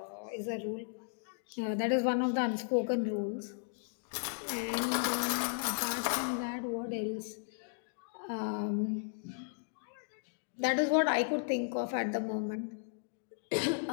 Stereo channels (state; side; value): silent; right; digital silence